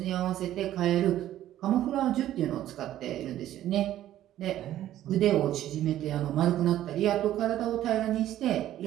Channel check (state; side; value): quieter; left; 12.8 dB